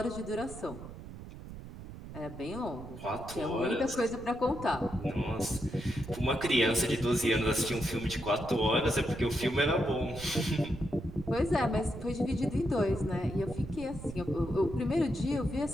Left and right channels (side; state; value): right; noise; rumble, 12 dB below the sound